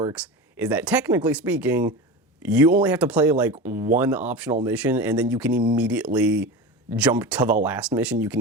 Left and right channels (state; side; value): normal; both; correlation 0.27